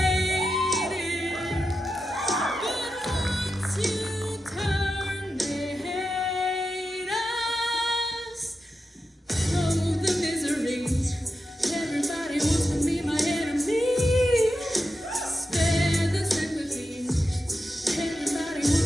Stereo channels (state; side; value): normal; both; correlation 0.89